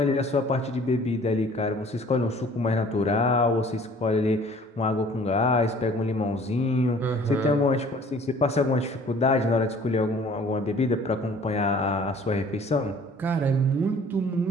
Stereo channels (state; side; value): normal; both; correlation 0.52